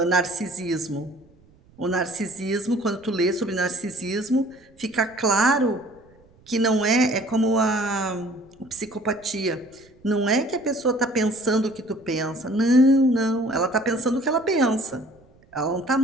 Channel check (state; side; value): noise; right; rumble, 29 dB below the sound